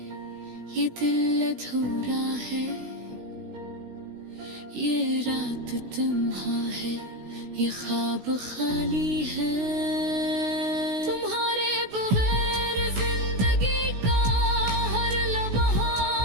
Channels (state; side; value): late; left; 16 ms